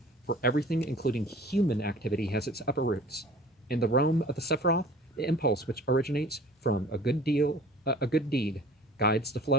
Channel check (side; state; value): both; normal; correlation 0.46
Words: for everything, including human activity, has its upper roots. In the realm of the Sephiroth, the impulse which originates from a good deed guides the